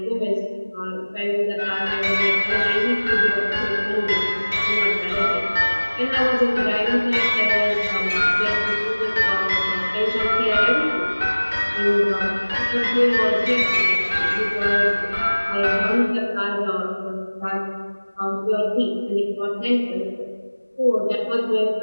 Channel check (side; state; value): both; inverted; correlation -1.00